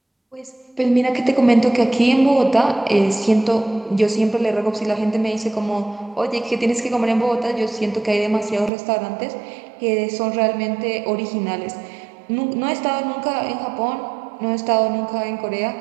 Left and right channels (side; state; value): left; drops out; at 8.7 s